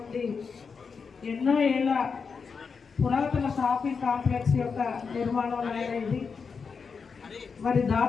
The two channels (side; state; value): right; quieter; 5.5 dB